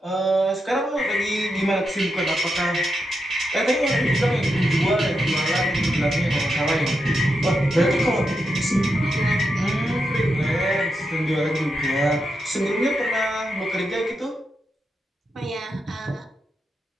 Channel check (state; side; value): normal; both; correlation 0.85